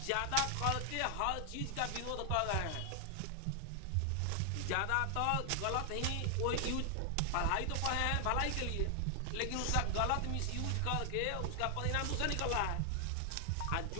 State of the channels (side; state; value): both; different; correlation 0.00